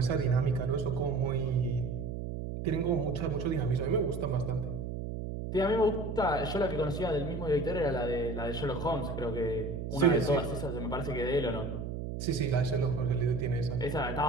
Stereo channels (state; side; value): noise; right; hum, 5 dB below the sound